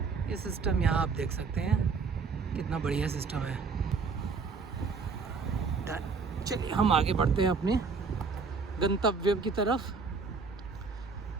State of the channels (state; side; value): quieter; left; 4.9 dB